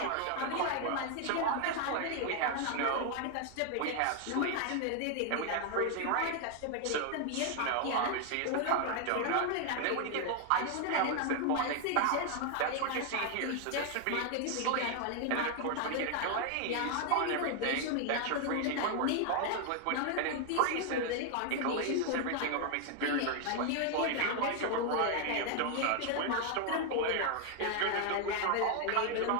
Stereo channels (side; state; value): both; different; correlation 0.00